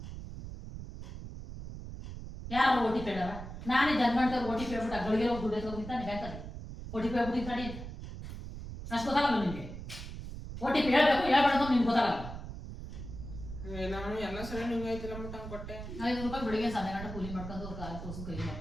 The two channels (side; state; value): right; noise; rumble, 10 dB below the sound